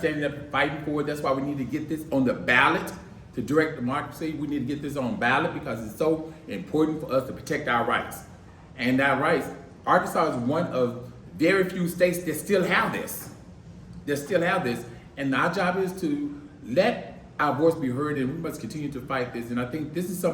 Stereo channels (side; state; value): both; identical; correlation 1.00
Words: up and fighting for it. That's why we need to get this on the ballot to direct democracy. We need to get this on ballot because it's so important for us to protect our rights. And our rights, Arkansas is one of very few states that still have this. And our job is to let our voice be heard, and we must continue to fight this. And I think this is